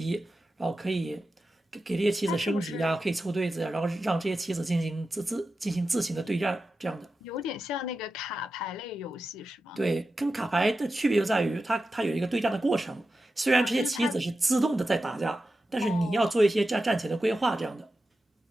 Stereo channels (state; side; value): normal; both; correlation 0.92